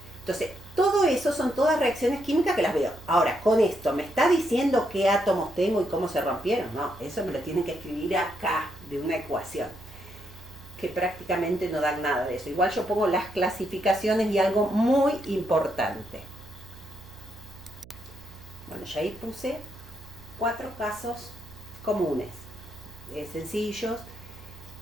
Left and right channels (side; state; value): right; noise; hum, 20 dB below the sound